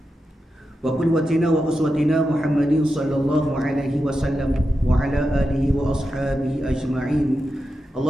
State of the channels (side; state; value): both; normal; correlation 0.89